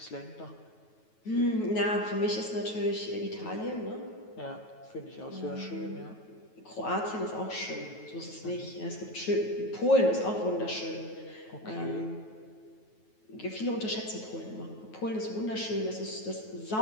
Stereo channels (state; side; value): late; right; 9.3 ms